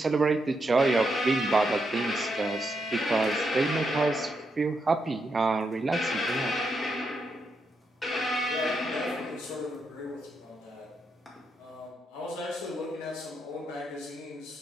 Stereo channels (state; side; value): normal; both; correlation 0.82